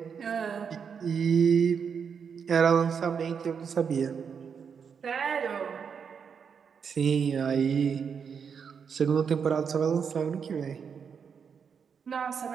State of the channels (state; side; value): quieter; left; 6.6 dB